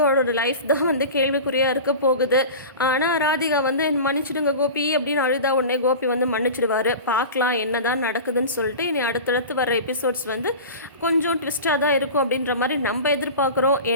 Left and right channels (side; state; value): both; inverted; correlation -0.32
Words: லைஃப் தான் வந்து கேள்விக்குறியாக இருக்க போகுது. ஆனால் ராதிகா வந்து மன்னிச்சிடுங்க கோபி அப்படின்னு அழுதா உடனே கோபி வந்து மன்னிச்சிடுவார். பார்க்கலாம் என்ன தான் நடக்குதுன்னு சொல்லிட்டு இனி அடுத்தடுத்து வர எபிசோட்ஸ் வந்து கொஞ்சம் ட்விஸ்ட்டாக தான் இருக்கும் அப்படின்ற மாதிரி நம்ம எதிர்பார்க்குறோம்.